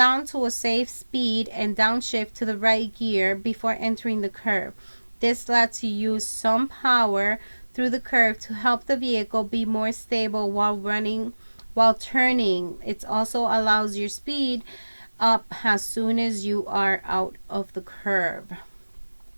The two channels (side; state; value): both; inverted; correlation -1.00